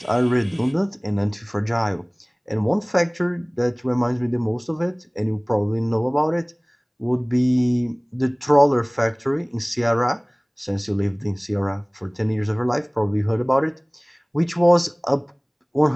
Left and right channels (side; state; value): both; identical; correlation 1.00